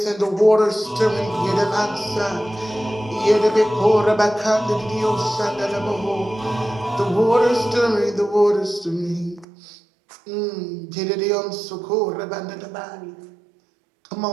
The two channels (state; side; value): drops out; left; at 9.5 s